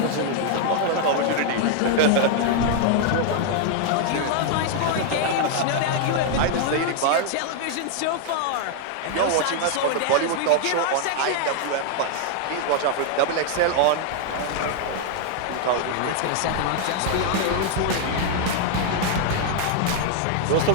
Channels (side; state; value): both; different; correlation 0.00